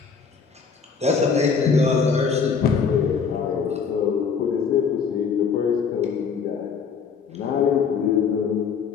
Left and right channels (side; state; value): right; quieter; 6.0 dB